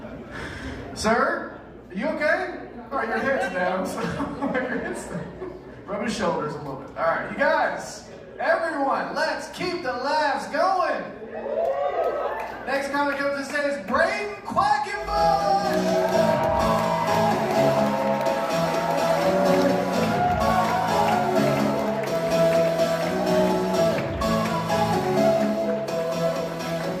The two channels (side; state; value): both; identical; correlation 1.00